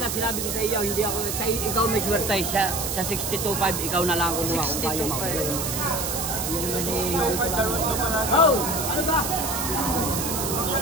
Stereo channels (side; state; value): right; noise; hiss, 3 dB below the sound